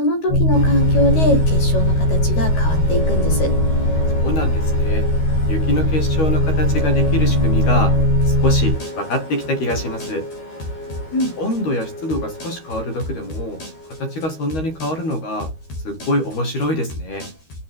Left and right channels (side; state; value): right; late; 13 ms